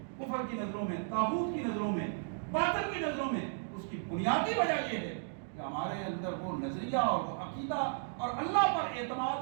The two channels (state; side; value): silent; left; digital silence